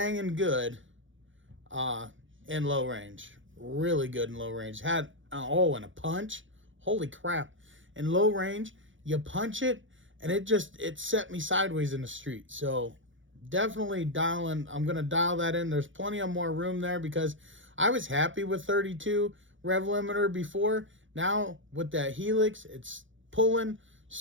good in low range. Really good in low range. Had, and a punch. Holy crap. In low range, you punch it, and it set me sideways in the street. So definitely I'm going to dial that in. There's plenty of more room there because I was happy with 32 rev limiter before. Now with that Helix, it's pulling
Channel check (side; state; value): left; late; 0.56 ms